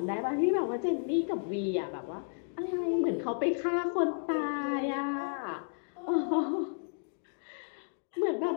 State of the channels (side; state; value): right; silent; digital silence